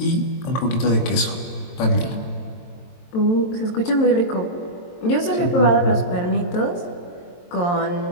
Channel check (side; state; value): right; late; 23 ms